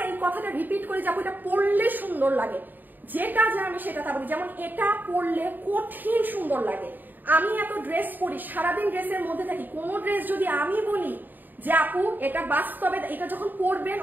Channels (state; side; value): late; left; 0.089 ms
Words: এই কথাটা রিপিট করে যাবো, এটা পরলে সুন্দর লাগে, যেটা যা আমি সেটা তা বলি। যেমন এটা পরলে কঠিন সুন্দর লাগে। আমি এত ড্রেস পরি, সারাদিন ড্রেসের মধ্যে থাকি, কোন ড্রেস যদি আমি বলি যে আপু এটা বাস্তবে, এটা যখন পরবেন